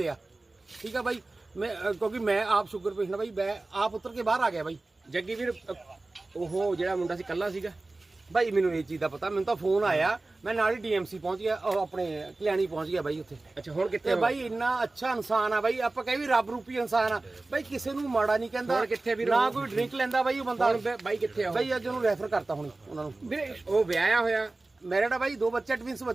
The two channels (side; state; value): left; quieter; 3.1 dB